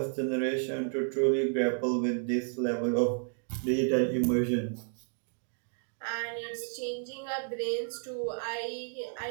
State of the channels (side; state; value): left; silent; 57 dB below the other